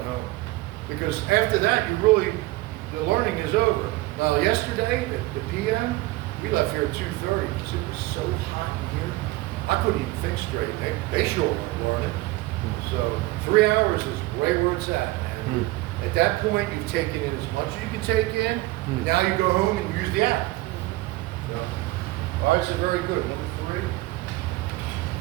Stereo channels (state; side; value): quieter; left; 19.4 dB